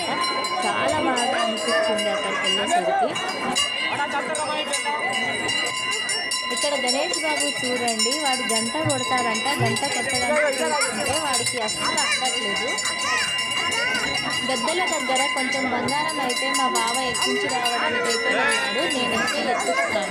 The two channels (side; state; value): both; identical; correlation 1.00